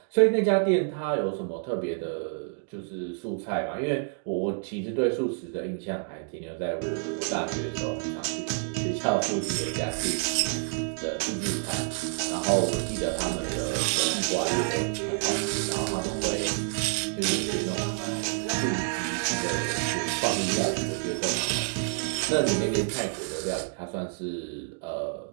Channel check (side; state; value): left; silent; 59 dB below the other